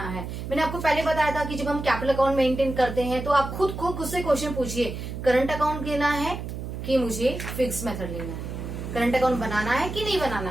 है। मैंने आपको पहले बताया था कि जब हम कैपिटल अकाउंट मेंटेन करते हैं तो आप खुद से क्वेश्चन पूछिए, करंट अकाउंट लेना है कि मुझे फिक्स मेथड लेना है, करंट अकाउंट बनाना है कि नहीं बनाना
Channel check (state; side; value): noise; right; hum, 7 dB below the sound